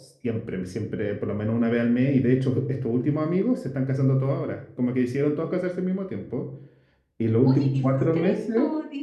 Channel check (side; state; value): both; identical; correlation 1.00